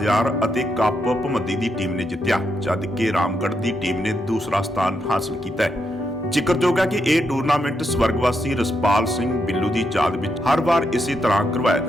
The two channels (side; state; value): both; normal; correlation 0.81